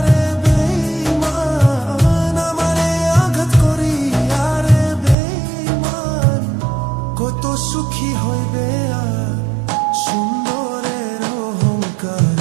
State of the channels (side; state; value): left; drops out; at 5.2 s